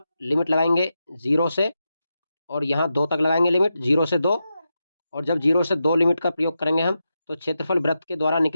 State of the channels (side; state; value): both; inverted; correlation -0.88